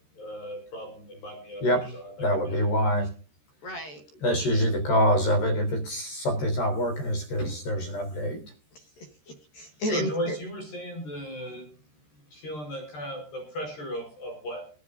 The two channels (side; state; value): right; late; 13 ms